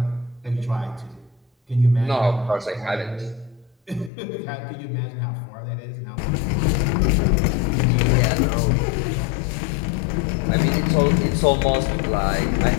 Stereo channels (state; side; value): drops out; right; at 4.1 s